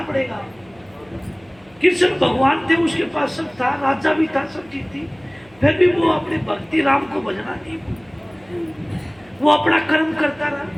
पड़ेगा। कृष्ण भगवान थे, उसके पास सब था, राजा भी था, सब चीज थी, फिर भी वो अपने भक्ति राम को भजना नहीं, वो अपना कर्म करता रहा।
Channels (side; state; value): right; noise; hum, 29 dB below the sound